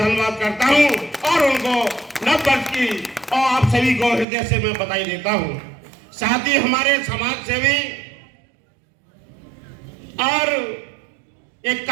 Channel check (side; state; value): left; drops out; at 4.2 s